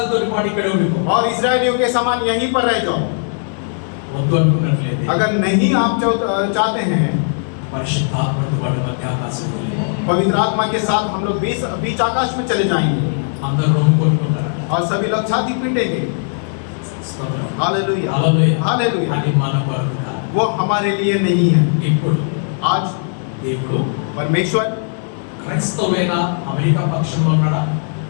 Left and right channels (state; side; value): silent; right; digital silence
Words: తోటి పాటు ఇక్కడ ఉండిపో. और इस्राएलियों के समान यहीं पर रह जाओ। వద్దు అనుకున్నట్లయితే अगर नहीं आप चाहते हैं, పరిశుద్ధాత్మతో పాటు మధ్యాకాశంలో వెళ్ళిపో. पवित्र आत्मा के साथ हम लोग बीच आकाश में चले जाएंगे అందరూ రొమ్ము కొట్టుకుంటారు. और सभी लोग छाती पीटेंगे। స్తోత్రం. हालेलुया। హల్లెలూయా. हालेलुया। అది మన కొరకు కాదు. वो हमारे लिए नहीं है। ఇప్పుడు आज దేవుడు परमेश्वर క్రైస్తవులైన అమెరికా పక్షంలో ఉన్నాడా?